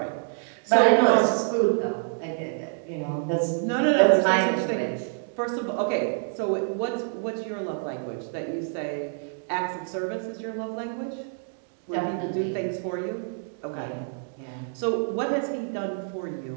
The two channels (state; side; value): silent; left; digital silence